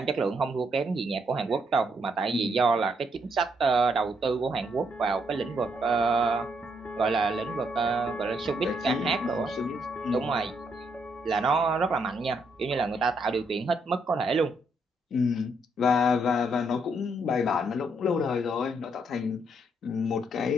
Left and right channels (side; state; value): both; normal; correlation 0.75